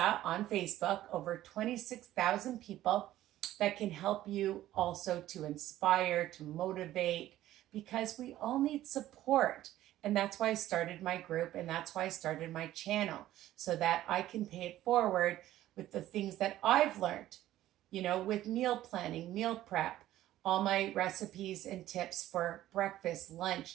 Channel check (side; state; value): left; quieter; 14.0 dB